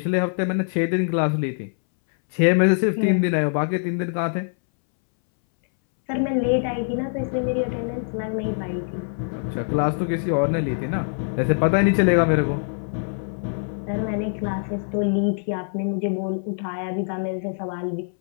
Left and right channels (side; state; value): right; silent; 62 dB below the other